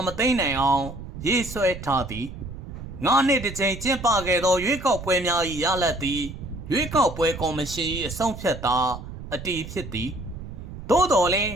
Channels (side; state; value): right; noise; rumble, 11 dB below the sound